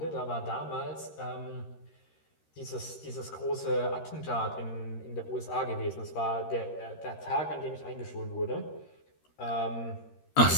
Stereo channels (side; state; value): right; late; 13 ms